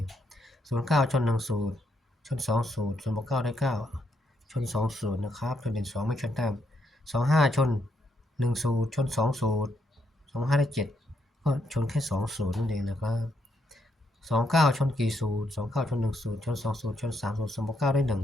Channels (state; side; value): normal; both; correlation 0.77